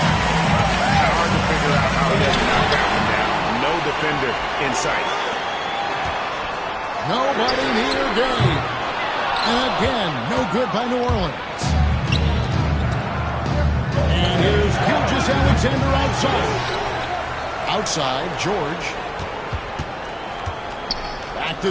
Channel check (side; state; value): both; identical; correlation 1.00